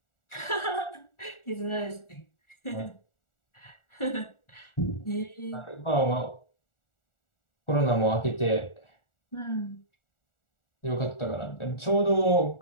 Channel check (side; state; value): right; late; 1.4 ms